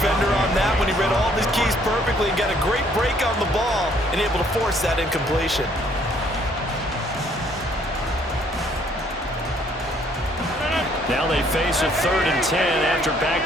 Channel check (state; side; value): normal; both; correlation 0.64